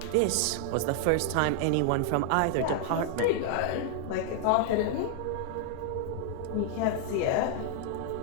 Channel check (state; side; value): different; both; correlation 0.00